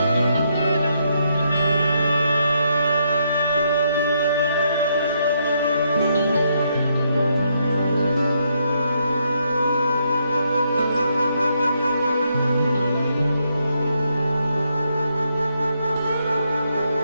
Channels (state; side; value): inverted; both; correlation -0.76